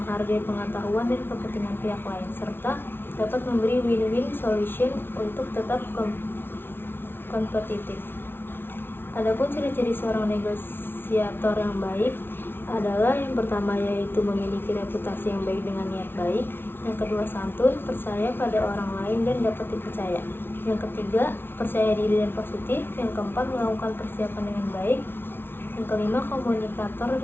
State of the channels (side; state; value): right; late; 0.11 ms